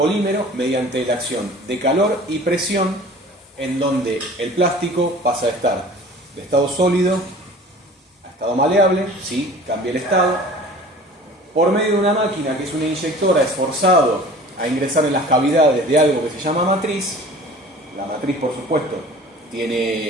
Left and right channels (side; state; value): both; normal; correlation 0.44